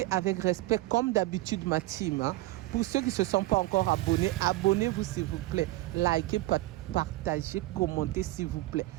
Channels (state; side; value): quieter; left; 18.6 dB